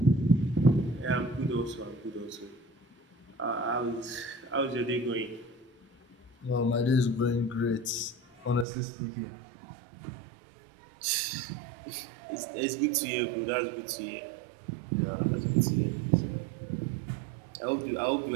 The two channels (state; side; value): drops out; left; at 8.7 s